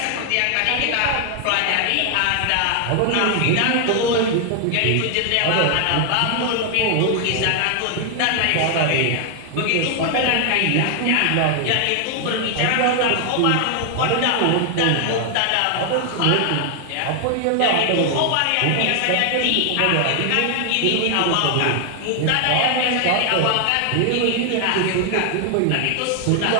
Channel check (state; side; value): different; both; correlation 0.00